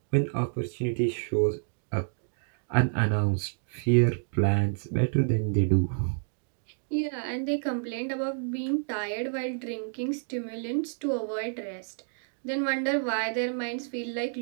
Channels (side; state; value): left; silent; digital silence